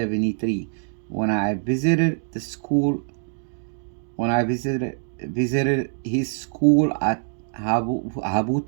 when I visited the school when I visited his school at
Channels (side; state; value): left; silent; digital silence